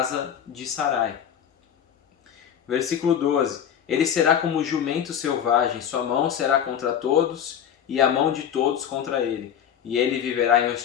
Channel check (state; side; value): quieter; right; 9.0 dB